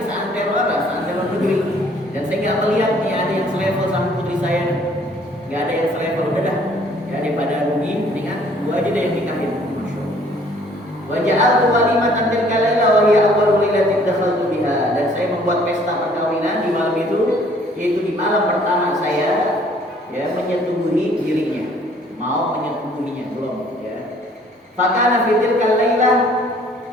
seantero apa? Seantero negeri. Dan saya nggak melihat nih ada yang selevel sama putri saya. Nggak ada yang selevel, udah dah. Ya, daripada rugi, mendingan gua aja deh yang nikahin. Wa ja'altu walimatan tilka laila wa hiya awwalu lailatin dakhaltu biha. Dan saya membuat pesta perkawinan di malam itu, yaitu di malam pertama saya, ya, menyetubuhi dirinya. Mau menyetubuhinya belum, ya. Fakana fi tilka laila,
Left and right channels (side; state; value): both; normal; correlation 0.59